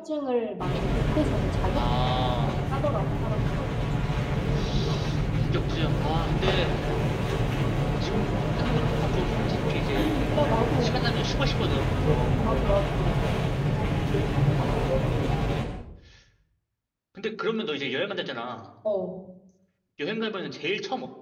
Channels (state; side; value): identical; both; correlation 1.00